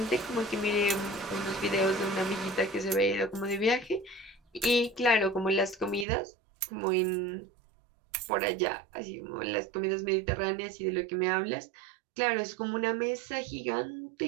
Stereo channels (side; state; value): left; drops out; at 6.1 s